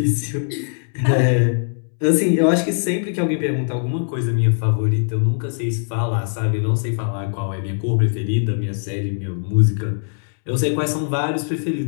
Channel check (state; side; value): silent; right; 65 dB below the other